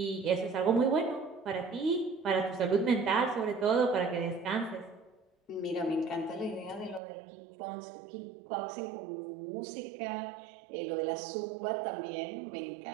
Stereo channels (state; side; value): drops out; left; at 7.0 s